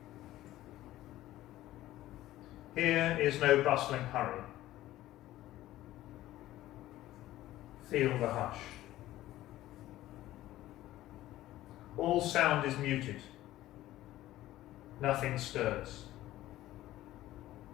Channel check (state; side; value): quieter; right; 15.1 dB